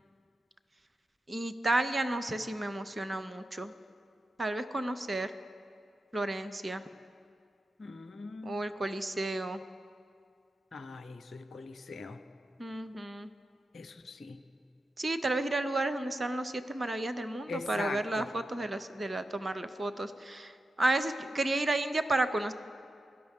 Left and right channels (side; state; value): both; normal; correlation 0.90